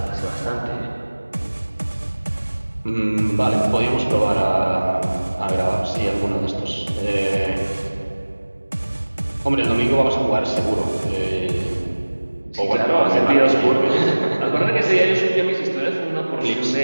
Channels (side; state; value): both; inverted; correlation -1.00